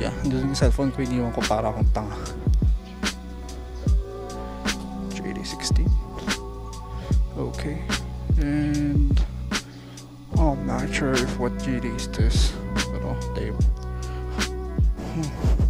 doon yung cellphone ko, iniwan ko para akong tanga. JD16. Okay. And I'm not sure if what JD is this. Pero tape.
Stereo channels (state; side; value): identical; both; correlation 1.00